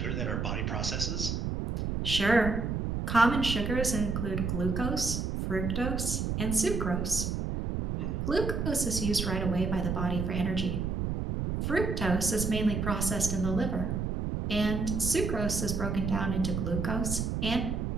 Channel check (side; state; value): right; noise; rumble, 1 dB below the sound